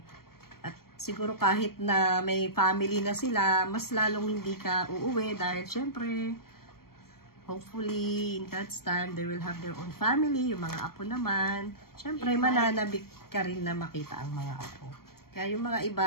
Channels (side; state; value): right; late; 0.93 ms